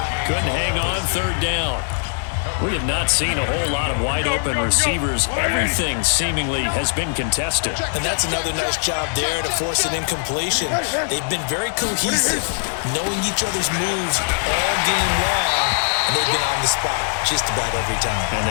Couldn't hang on, 3rd down. We have not seen a whole lot of wide-open receivers. Everything seemingly has been contested. And that's another nice job there to force an incompletion. They've been very cohesive, knowing each other's moves all game long, and they've been on the spot just about every time. And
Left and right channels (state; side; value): silent; right; digital silence